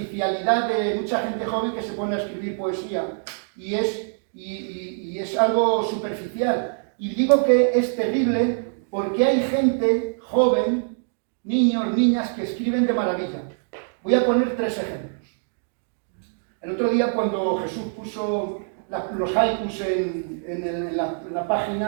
de mucha gente joven que se pone a escribir poesía y es algo superficial. Y digo que es terrible porque hay gente joven, niños, niñas, que escriben de maravilla. Voy a poner 3 ejemplos. El otro día cuando Jesús puso los haikus en la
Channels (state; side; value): silent; left; digital silence